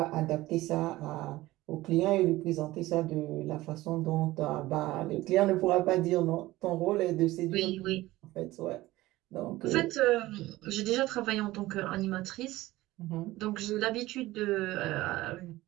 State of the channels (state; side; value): quieter; left; 17.7 dB